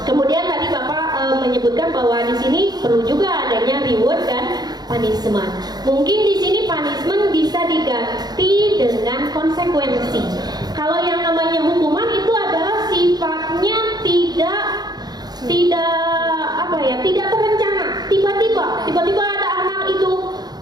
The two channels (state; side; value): late; left; 0.19 ms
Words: Kemudian tadi Bapak menyebutkan bahwa di sini perlu juga adanya reward dan punishment. Mungkin di sini punishment bisa diganti dengan konsekuensi. Kalau yang namanya hukuman itu adalah sifatnya tidak terencana. Tiba-tiba ada anak itu